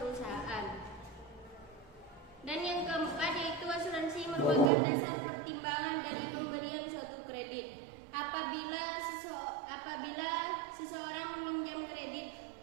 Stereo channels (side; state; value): left; drops out; at 4.7 s